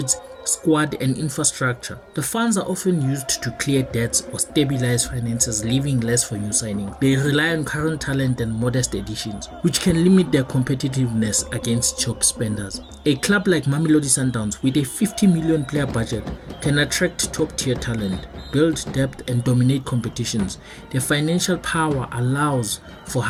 squad and infrastructure. The funds are often used to clear debts or stabilize finances, leaving less for new signings. They rely on current talent and modest additions, which can limit their competitiveness against top spenders. A club like Mamelodi Sundowns with a 50 million player budget can attract top tier talent, build depth and dominate competitions. Their financial power allows for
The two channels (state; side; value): identical; both; correlation 1.00